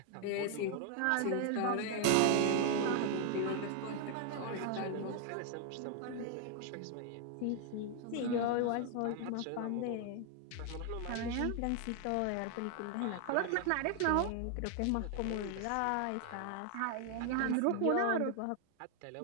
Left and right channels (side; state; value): both; different; correlation 0.00